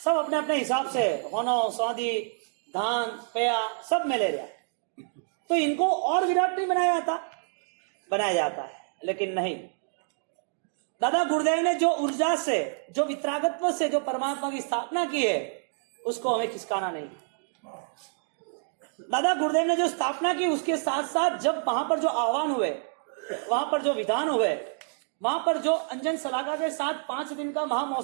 सब अपने अपने हिसाब से होनो, स्वादी, धान, पेया सब में ले रहा है। तो इनको और विराट नहीं बनाया जाता है, लेकिन नहीं। दादा गुरुदेव ने जो ऊर्जा से, जो वितरागत्व से जो परमात्मा की स्थापना की है, उसको हमें खिसकाना नहीं। दादा गुरुदेव ने जो स्थापना की, उसके साथ साथ जब वहां पर जो आह्वान हुए, वहां पर जो विधान हुए, वहां पर जो अंजन सलाका के साथ 5 दिन का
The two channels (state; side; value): silent; left; 59 dB below the other